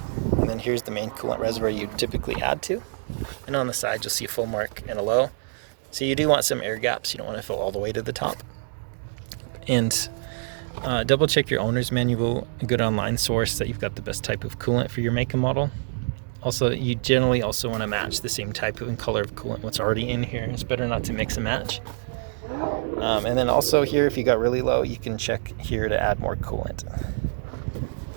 and then here's the main coolant reservoir you typically add to. And on the side, you'll see a full mark and a low. So you do want some air gaps. You don't want to fill all the way to the top. And double check your owner's manual, a good online source, that you've got the best type of coolant for your make and model. Also, you generally also want to match the same type and color of coolant what's already in here. It's better not to mix and match. And then also here, if you got really low, you can check here to add more coolant.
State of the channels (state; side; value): silent; left; digital silence